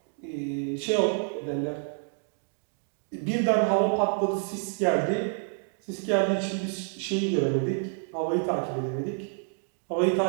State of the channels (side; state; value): left; silent; 58 dB below the other